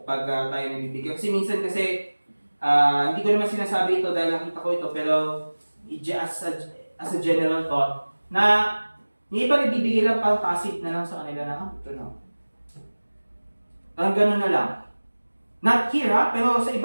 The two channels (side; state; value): both; inverted; correlation -1.00